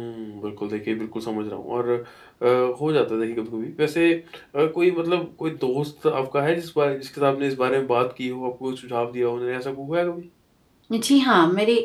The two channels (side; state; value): both; identical; correlation 1.00